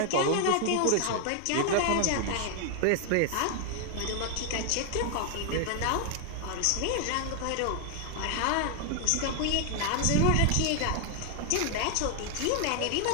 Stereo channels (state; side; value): different; both; correlation 0.00